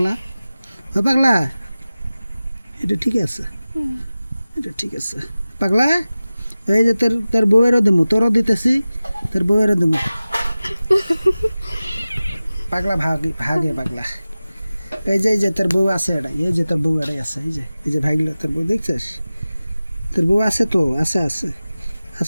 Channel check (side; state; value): both; inverted; correlation -0.96